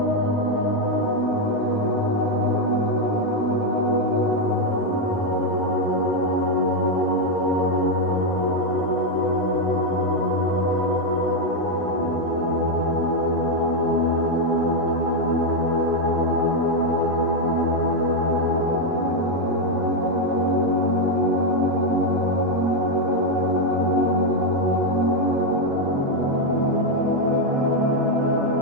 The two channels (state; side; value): normal; both; correlation 0.03